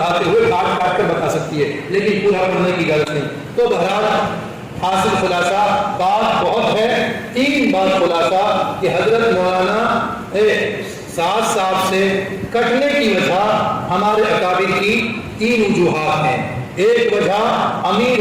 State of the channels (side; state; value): both; identical; correlation 1.00